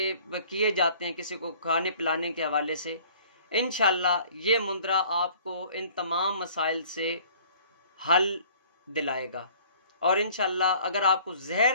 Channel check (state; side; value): inverted; both; correlation -0.52